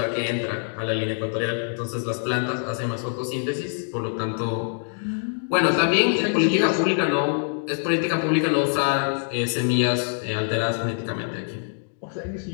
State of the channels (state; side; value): silent; right; digital silence